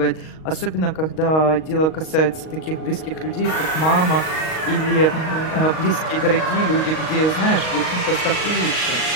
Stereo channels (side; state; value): right; late; 38 ms